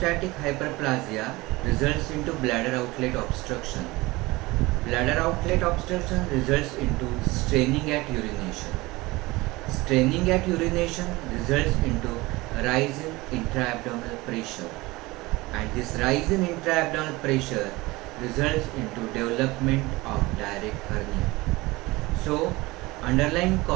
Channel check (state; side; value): quieter; left; 21.4 dB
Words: hyperplasia results into bladder outlet obstruction. Bladder outlet obstruction results into straining at urination. Straining at urination results into rise in intra-abdominal pressure. And this rise in intra-abdominal pressure results into development of direct hernia. So, underlying